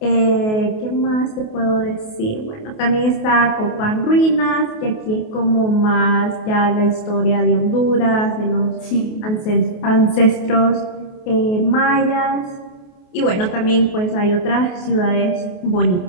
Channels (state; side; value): late; right; 28 ms